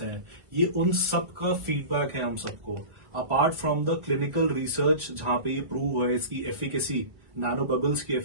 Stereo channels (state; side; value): late; left; 1.5 ms